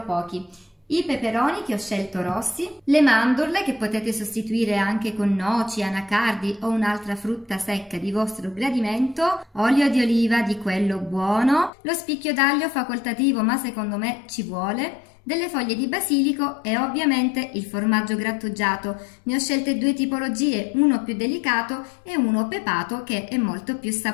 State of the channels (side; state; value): right; drops out; at 11.7 s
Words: pochi. I peperoni che ho scelto rossi, le mandorle che potete sostituire anche con noci, anacardi o un'altra frutta secca di vostro gradimento, olio di oliva di quello buono, lo spicchio d'aglio facoltativo ma secondo me ci vuole, delle foglie di basilico e ovviamente il formaggio grattugiato. Ne ho scelte due tipologie, uno più delicato e uno pepato che è molto più